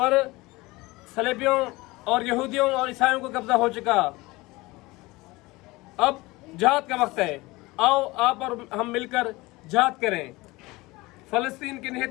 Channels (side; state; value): right; quieter; 21.5 dB